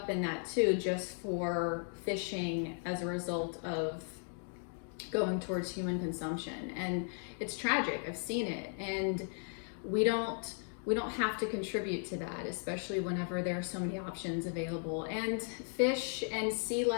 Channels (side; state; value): right; silent; 54 dB below the other